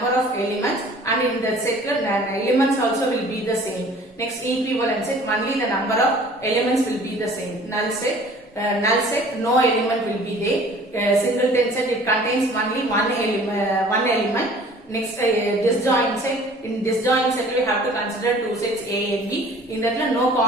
of elements, and in the set elements also will be the same. Next, equivalent set, only the number of elements will be the same. Null set, no element will be there. Singleton set, it contains only one element. Next, disjoint set. In disjoint set, we have to consider two sets A and B. In that, no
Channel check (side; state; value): both; normal; correlation 0.49